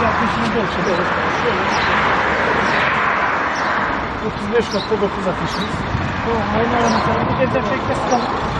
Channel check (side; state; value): both; identical; correlation 1.00